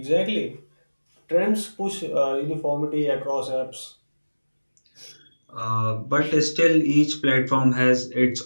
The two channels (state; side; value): inverted; both; correlation -1.00